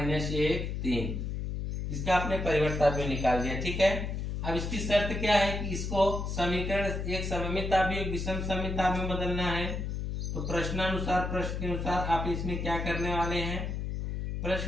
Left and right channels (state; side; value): noise; left; hum, 3 dB below the sound